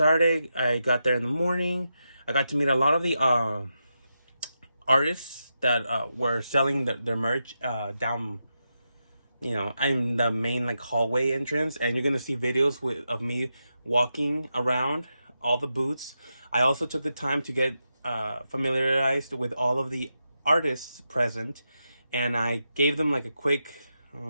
I got there in the morning. I got to meet a lot of the artists that were selling their merch down. You know, I'm the main hallway entrance, and you're gonna see videos of me walking around all the booths. I also took the time to get familiarized with all of the artists present, and I gave them a quick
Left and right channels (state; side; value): inverted; both; correlation -0.87